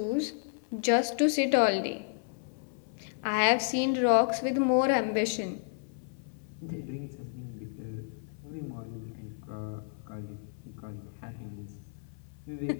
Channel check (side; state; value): right; silent; 57 dB below the other